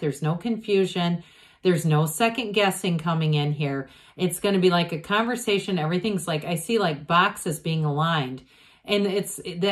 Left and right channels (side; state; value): both; identical; correlation 1.00